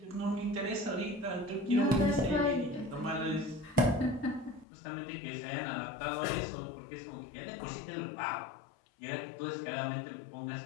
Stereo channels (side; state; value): right; drops out; at 4.7 s